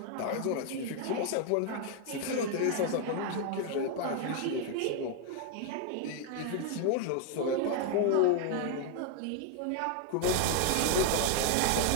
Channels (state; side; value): different; both; correlation 0.00